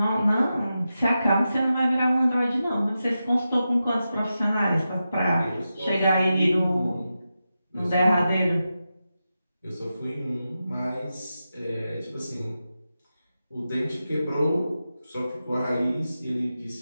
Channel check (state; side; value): inverted; both; correlation -0.91